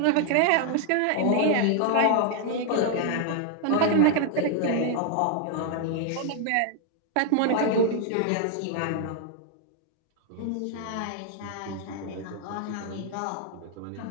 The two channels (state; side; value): different; both; correlation 0.00